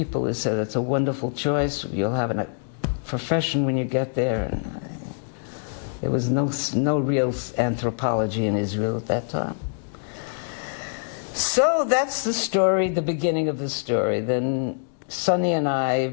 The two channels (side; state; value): right; silent; digital silence